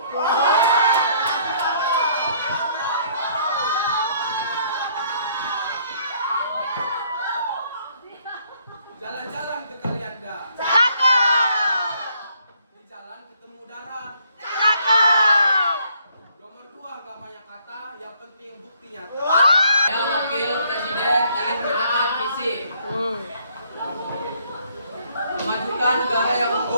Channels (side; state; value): both; inverted; correlation -0.66